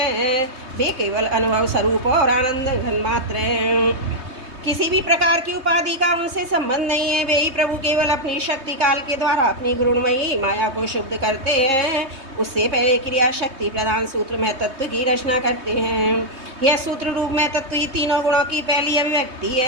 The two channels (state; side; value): late; left; 3.2 ms